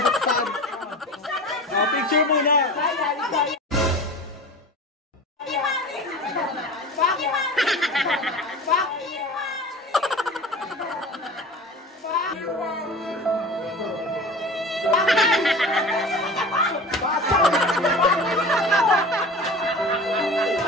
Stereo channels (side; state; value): both; normal; correlation 0.36